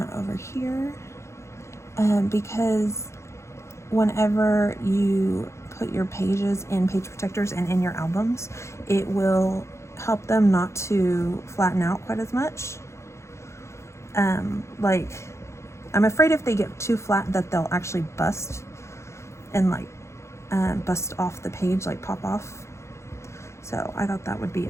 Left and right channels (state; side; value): late; right; 0.13 ms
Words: over here because whenever you put your pages in page protectors and in your albums, it will help them not to flatten out quite as much. Like I'm afraid if they get too flat that they'll actually bust and like bust off the page, like pop off. So I thought that would be